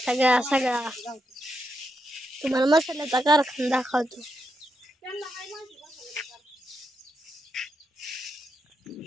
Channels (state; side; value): normal; both; correlation 0.83